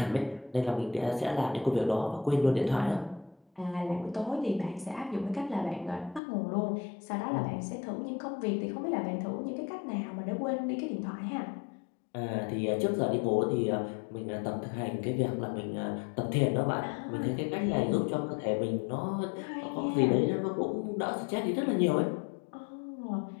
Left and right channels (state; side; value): drops out; right; at 6.2 s